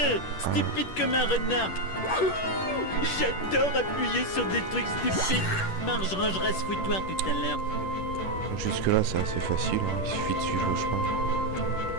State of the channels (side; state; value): right; late; 10 ms